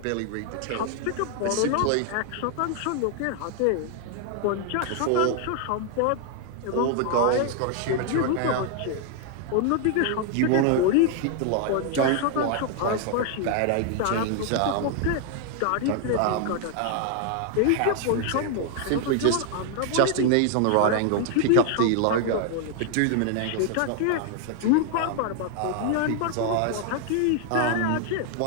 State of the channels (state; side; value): different; both; correlation 0.00